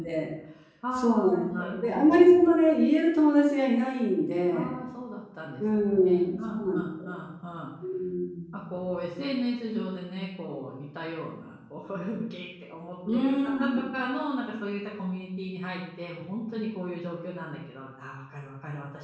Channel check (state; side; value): identical; both; correlation 1.00